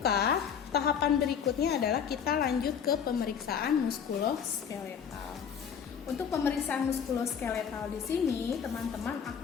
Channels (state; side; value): quieter; right; 7.6 dB